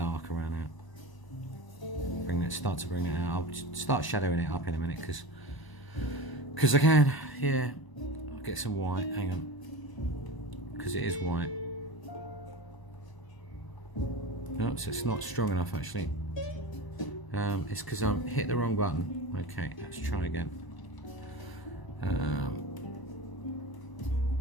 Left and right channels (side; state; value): right; late; 1.0 ms